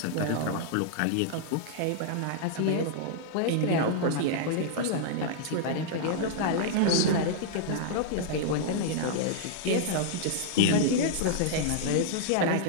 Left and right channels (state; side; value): different; both; correlation -0.01